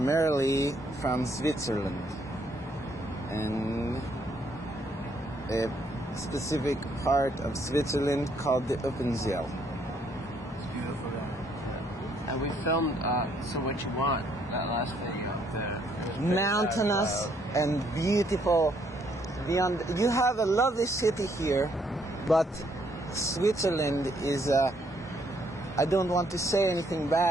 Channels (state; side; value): normal; both; correlation 0.69